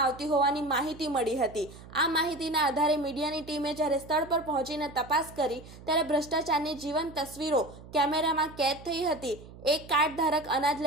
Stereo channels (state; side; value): noise; right; hum, 18 dB below the sound